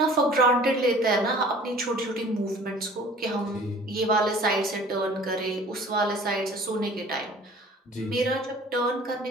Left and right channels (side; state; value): both; normal; correlation 0.48